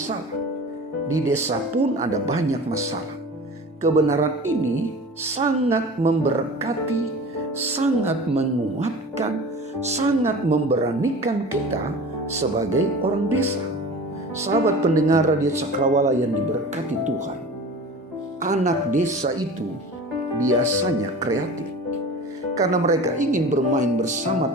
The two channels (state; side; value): normal; both; correlation 0.37